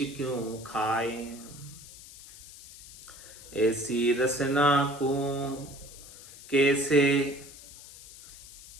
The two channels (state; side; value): noise; left; hiss, 17 dB below the sound